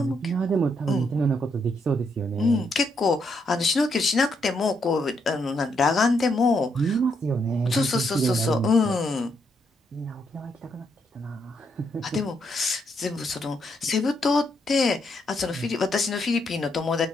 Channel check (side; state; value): both; normal; correlation 0.77